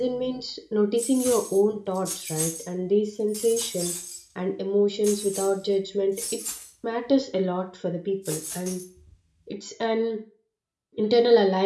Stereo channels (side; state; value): both; identical; correlation 1.00